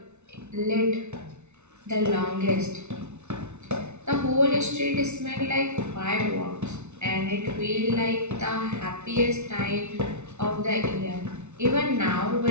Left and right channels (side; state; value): left; late; 0.82 ms